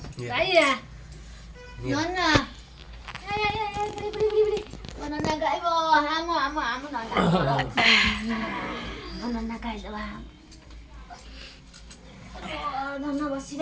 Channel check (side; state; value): both; identical; correlation 1.00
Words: ଗାଇଆ ନନା ନନା ଗାଇବ ଆମ ନନା ଗାଇଦବା ନନା